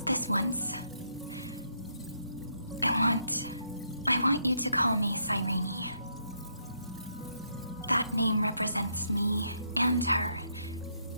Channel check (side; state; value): both; inverted; correlation -0.76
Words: this once. I want you to call me Cyrene. That name represents me and her.